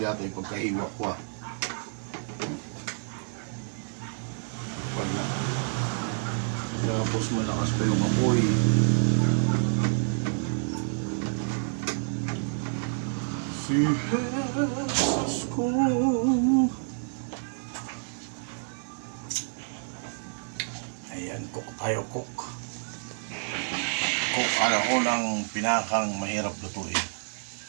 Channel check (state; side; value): silent; left; 59 dB below the other